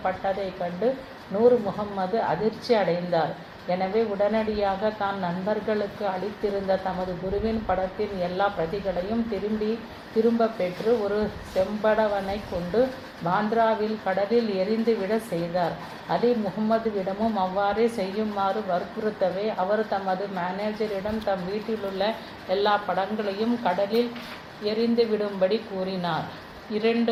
கண்டு நூர் முகம்மது அதிர்ச்சி அடைந்தார். எனவே உடனடியாக தான் நண்பர்களுக்கு அளித்திருந்த தமது குருவின் படத்தின் எல்லா பிரதிகளையும் திரும்ப பெற்று ஒரு செம்படவனை கொண்டு பாந்த்ராவில் கடலில் எரிந்துவிட செய்தார். அலி முகம்மதுவிடமும் அவ்வாறே செய்யுமாறு வற்புறுத்தவே அவர் தமது மேனேஜரிடம் தம் வீட்டிலுள்ள எல்லா படங்களையும் கடலில் எரிந்துவிடும்படி கூறினார்.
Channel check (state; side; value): identical; both; correlation 1.00